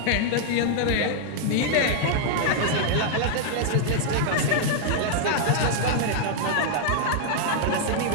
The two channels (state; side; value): different; both; correlation -0.01